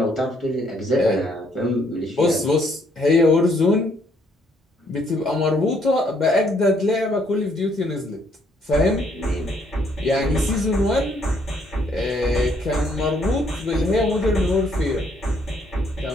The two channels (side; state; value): both; normal; correlation 0.68